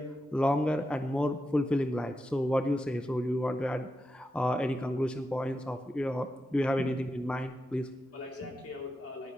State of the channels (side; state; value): both; normal; correlation 0.88